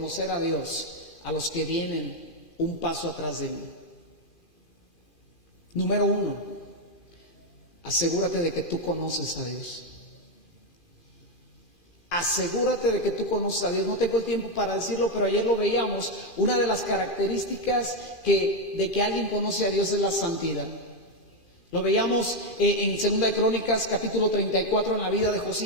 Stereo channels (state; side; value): late; right; 2.4 ms